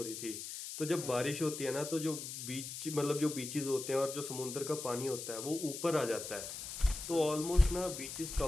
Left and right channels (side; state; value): left; noise; hiss, 7 dB below the sound